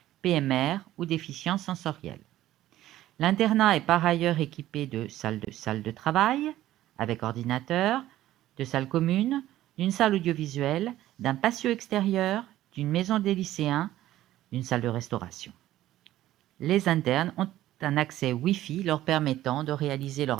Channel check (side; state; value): left; quieter; 14.2 dB